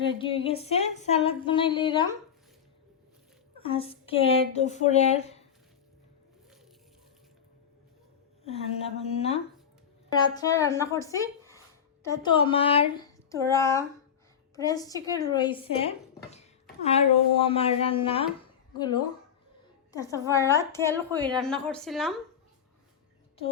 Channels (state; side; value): quieter; right; 8.0 dB